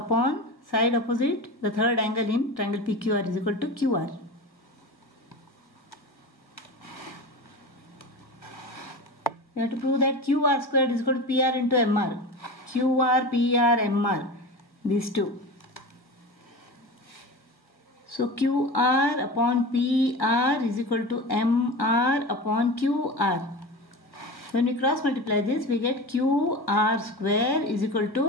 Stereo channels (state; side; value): late; right; 1.5 ms